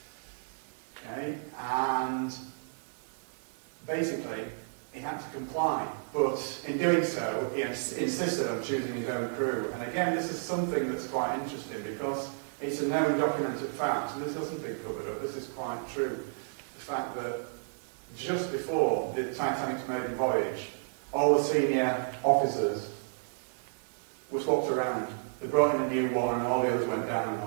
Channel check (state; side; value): silent; left; digital silence